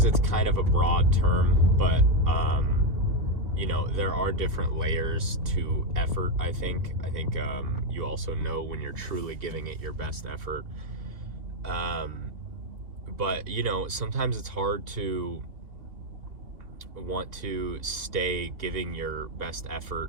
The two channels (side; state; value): left; late; 2.8 ms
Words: it's kind of a broad term, but there are different layers to effort. I think you also know when you're truly giving it your best effort. But sometimes it's hard to want to stay giving your best effort,